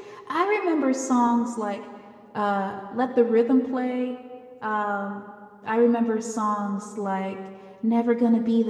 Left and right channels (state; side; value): identical; both; correlation 1.00